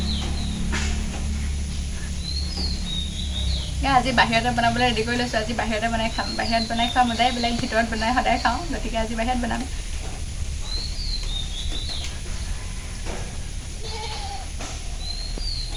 আজি বাহিৰতে বনাবলৈ ৰেডি কৰি লৈছোঁ। আজি বাহিৰতে বনাই খাম। বাহিৰত বনাই খোৱা মজাই বেলেগ, ভিতৰত বনাই সদায় খাওঁ। গতিকে আজি বাহিৰত বনাম।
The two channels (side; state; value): both; identical; correlation 1.00